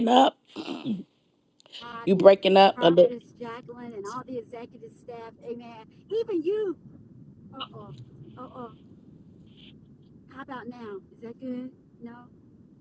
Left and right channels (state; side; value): identical; both; correlation 1.00